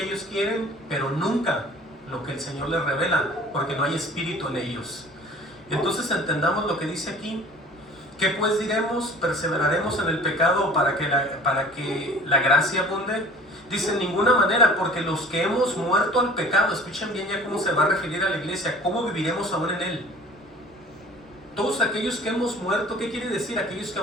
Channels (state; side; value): normal; both; correlation 0.47